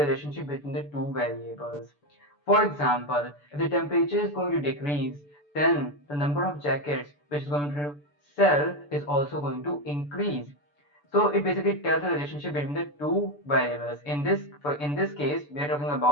between the two variables. For example, if the temperature is going to decrease, then the number of jackets which is going to sell is also going to increase. So it basically tells the relationship between the two variables. In this case, we are talking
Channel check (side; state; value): right; late; 6.9 ms